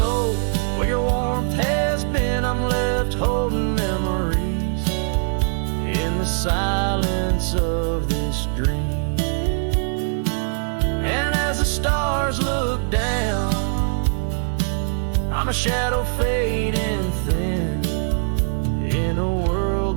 where your warmth has been. I'm left holding memories in the silence of this dream. And as the stars look down, I'm a shadow fading thin in a world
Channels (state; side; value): silent; left; 64 dB below the other